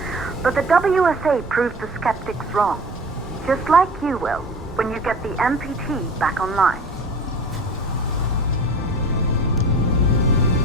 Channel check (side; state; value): both; normal; correlation 0.39